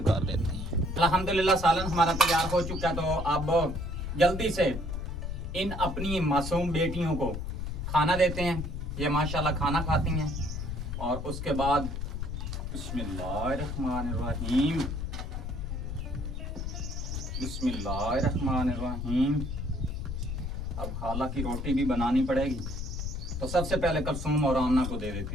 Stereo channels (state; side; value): noise; left; rumble, 4 dB below the sound